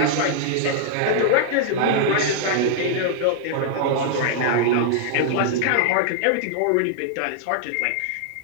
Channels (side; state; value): both; different; correlation -0.01